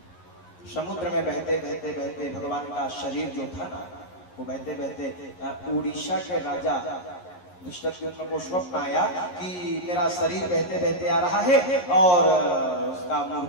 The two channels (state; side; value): late; right; 11 ms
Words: समुद्र में बहते बहते बहते भगवान का शरीर जो था ना, वो बहते बहते उड़ीसा के राजा दुष्टद्युम्न को स्वप्न आया कि मेरा शरीर बहते बहते आ रहा है और उसका